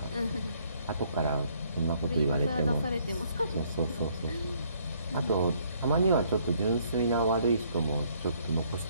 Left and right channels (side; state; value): both; inverted; correlation -0.66